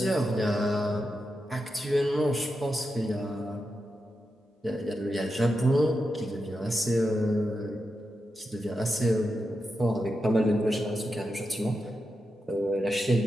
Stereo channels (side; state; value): both; normal; correlation 0.88